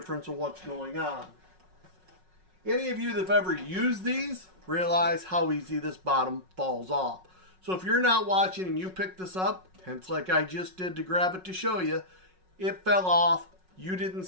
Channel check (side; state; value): left; late; 5.4 ms